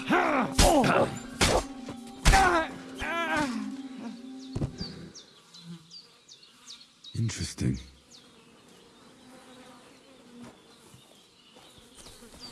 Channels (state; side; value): identical; both; correlation 1.00